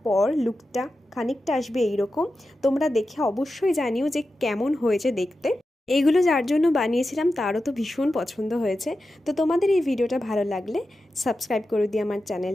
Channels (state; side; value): normal; both; correlation 0.91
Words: পর লুকটা খানিকটা আসবে এইরকম। তোমরা দেখে অবশ্যই জানিও যে কেমন হয়েছে দেখতে। এইগুলো যার জন্য বানিয়েছিলাম তারও তো ভীষণ পছন্দ হয়েছে। তো তোমাদের এই ভিডিওটা ভালো লাগলে সাবস্ক্রাইব করে দিও আমার